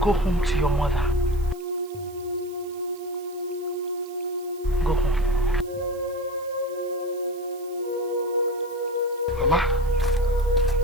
Go home to your mother. Go home. Mama?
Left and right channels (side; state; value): right; noise; hiss, 22 dB below the sound